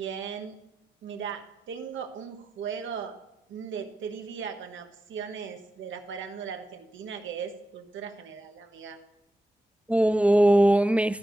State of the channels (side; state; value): both; normal; correlation 0.90